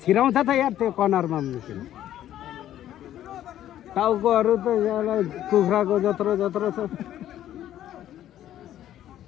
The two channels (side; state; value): right; quieter; 12.1 dB